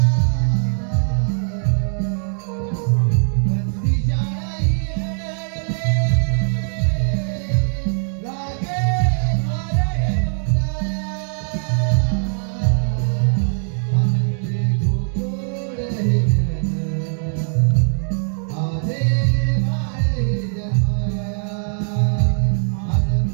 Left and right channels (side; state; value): left; silent; digital silence